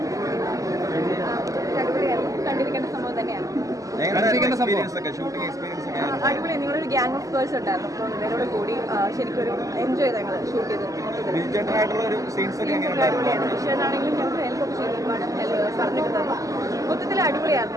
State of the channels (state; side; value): late; left; 0.16 ms